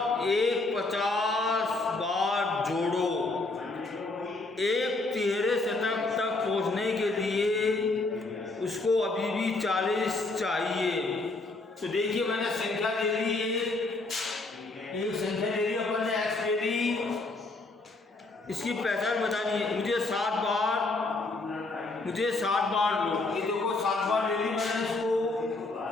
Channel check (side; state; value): right; quieter; 3.3 dB